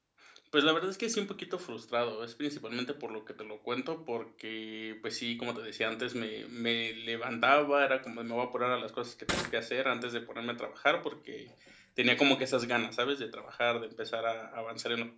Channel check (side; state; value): both; identical; correlation 1.00